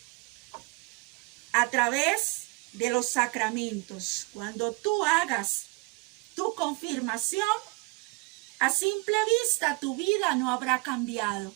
a través de los sacramentos. Cuando tú hagas tu confirmación, a simple vista tu vida no habrá cambiado,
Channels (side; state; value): left; quieter; 28.8 dB